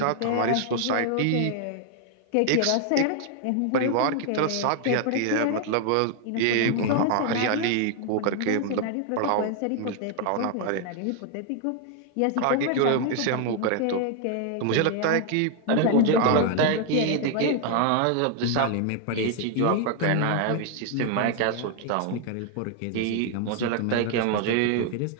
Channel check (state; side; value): different; both; correlation 0.00